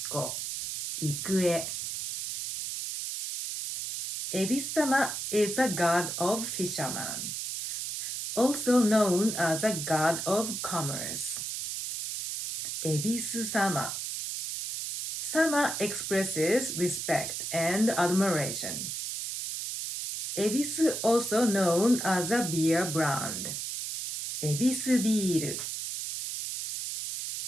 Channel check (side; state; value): right; noise; hiss, 4 dB below the sound